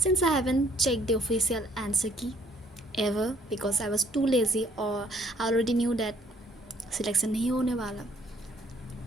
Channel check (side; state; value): both; normal; correlation 0.63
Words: I haven't checked the official answer key ever because I was too lazy or I already knew that selection नहीं होने वाला.